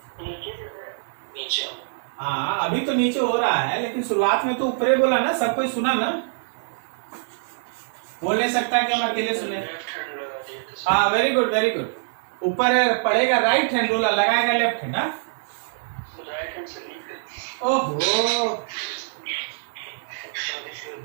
नीचे। हाँ अभी तो नीचे हो रहा है, लेकिन शुरुआत में तो ऊपर ही बोला ना, सब कोई सुना ना? बोल नहीं सकता कि हम अकेले सुने। हाँ वेरी गुड वेरी गुड। ऊपर पड़ेगा राइट हैंड, रोलर लगाएगा लेफ्ट हैंड। राइट हैंड से नीचे। ओहो,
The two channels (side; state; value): left; silent; digital silence